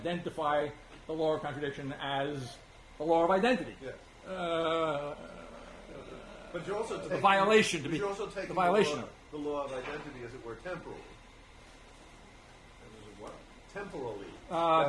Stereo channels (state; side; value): identical; both; correlation 1.00